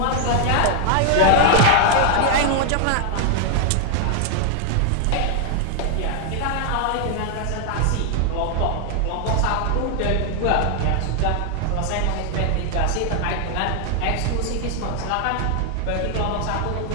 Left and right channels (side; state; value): both; different; correlation 0.00